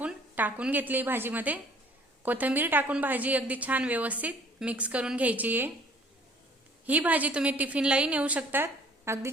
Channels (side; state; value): both; normal; correlation 0.55